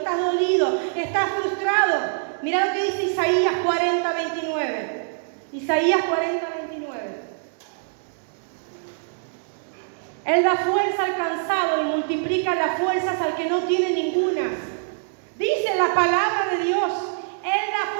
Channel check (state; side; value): silent; left; digital silence